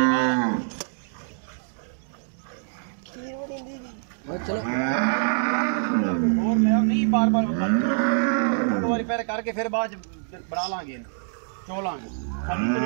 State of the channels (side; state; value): left; silent; digital silence